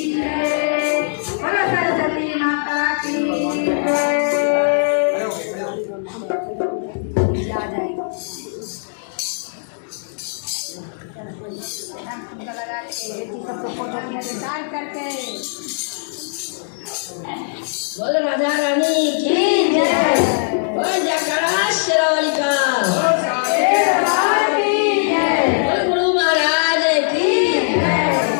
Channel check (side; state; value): right; silent; digital silence